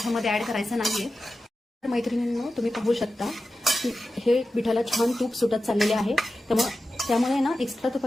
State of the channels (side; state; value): both; normal; correlation 0.93